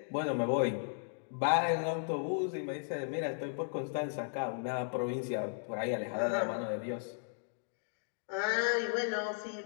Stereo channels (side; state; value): right; silent; digital silence